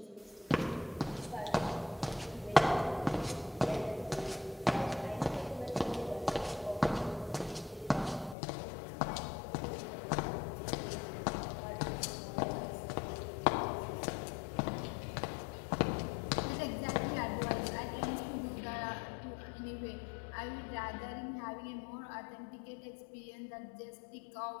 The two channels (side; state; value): right; drops out; at 8.3 s